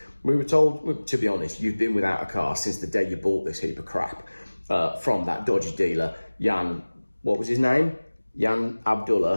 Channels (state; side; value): inverted; both; correlation -1.00